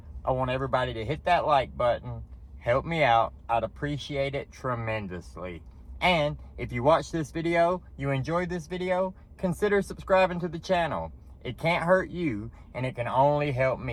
I want everybody to hit that like button. Help me out. I'd appreciate it tremendously. And if you watch this video, you enjoyed this video, consider subscribing to the channel. It can't hurt you, and it can only help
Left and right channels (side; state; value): both; identical; correlation 1.00